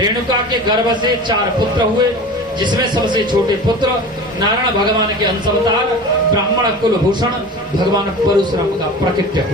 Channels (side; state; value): both; normal; correlation 0.35